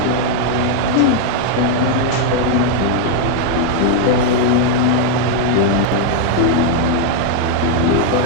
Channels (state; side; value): different; both; correlation 0.00